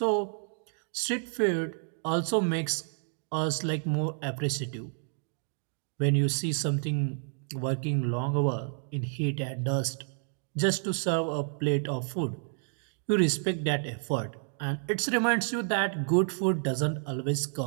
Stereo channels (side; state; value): left; silent; 58 dB below the other